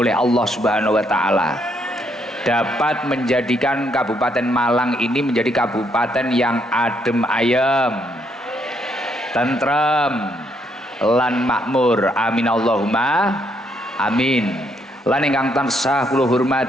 Allah Subhanahu wa taala, dapat menjadikan Kabupaten Malang ini menjadi kabupaten yang adem ayem, tentrem, lan makmur. Amin Allahumma amin. Lan ingkang tansah kula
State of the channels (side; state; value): both; normal; correlation 0.73